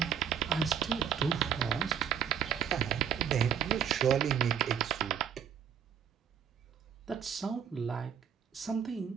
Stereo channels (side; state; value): left; quieter; 8.5 dB